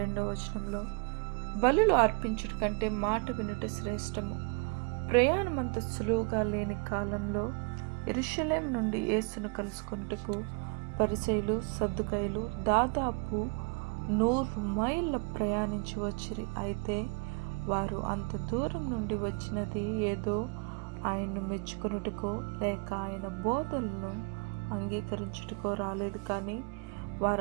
వచనంలో, బలులు అర్పించుట కంటే మాట వినుట శ్రేష్టము. ప్రయాణమంత సులువుగా లేని కాలంలో యెరూషలేము నుండి యేసును కలుసుకొనుటకు పరిసయ్యులు, సద్దూకయ్యులు దాదాపు 100 మైళ్ళ ప్రయాణించి వచ్చిరి. అయితే వారు అంత దూరం నుండి వచ్చినది ఏదో ఆయన్ను మెచ్చుకొనుటకో లేక ఆయన బోధనలను అంగీకరించుటకో రాలేదు, కానీ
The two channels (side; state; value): left; quieter; 31.1 dB